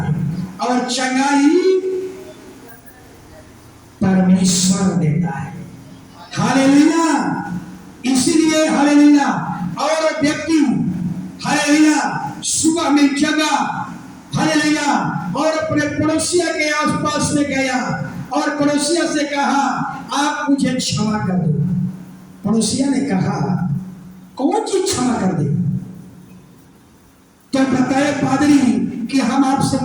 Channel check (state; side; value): identical; both; correlation 1.00